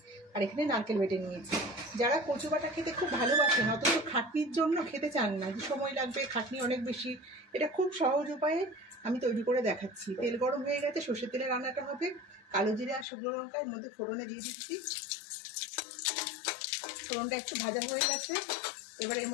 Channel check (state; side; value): drops out; right; at 13.1 s